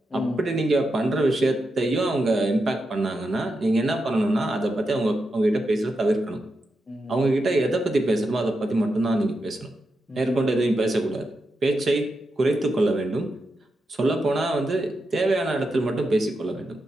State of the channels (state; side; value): normal; both; correlation 0.87